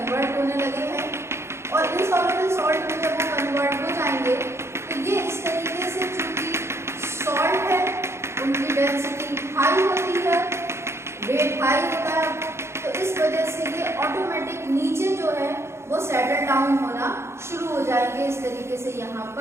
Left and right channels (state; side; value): late; left; 0.13 ms